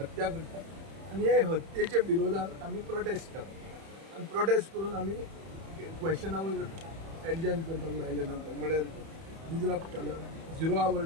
करता आनी हे हत्येच्या विरोधात आमी प्रोटेस्ट केलो आनी प्रोटेस्ट करून आमी क्वेश्चनावर एडजर्न करपाक लायले. नंतर म्हळ्यार डिजरप्ट केलो 0 आवर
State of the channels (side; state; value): left; late; 31 ms